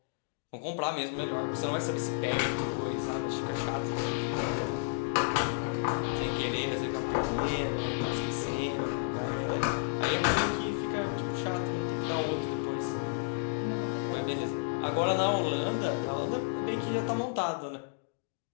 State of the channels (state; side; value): silent; right; digital silence